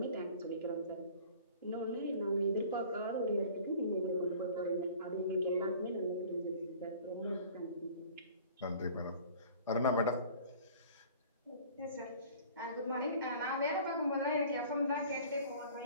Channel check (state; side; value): inverted; both; correlation -0.47